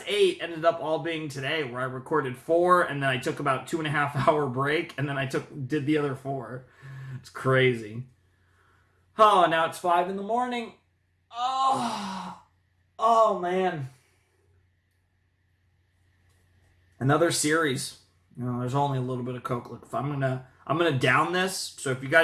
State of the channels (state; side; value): identical; both; correlation 1.00